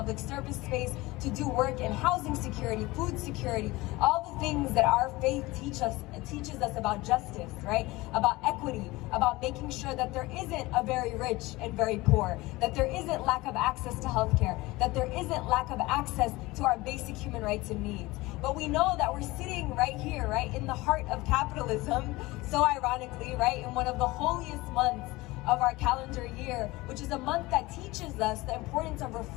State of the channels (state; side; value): quieter; right; 20.7 dB